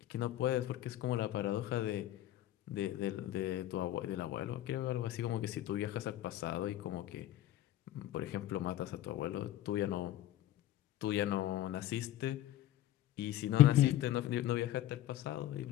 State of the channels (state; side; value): quieter; right; 13.5 dB